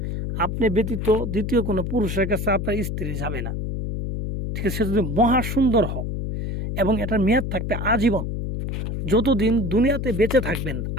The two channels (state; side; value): noise; left; hum, 3 dB below the sound